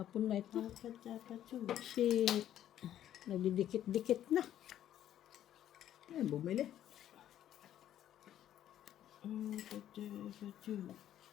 na ito. Dapat. Kasi nagdidikit-dikit na. Ay, bumili.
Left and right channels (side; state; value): right; quieter; 11.4 dB